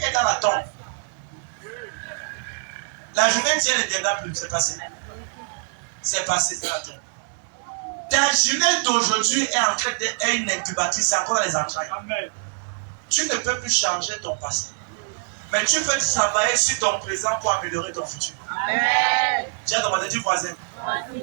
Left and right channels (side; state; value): left; silent; digital silence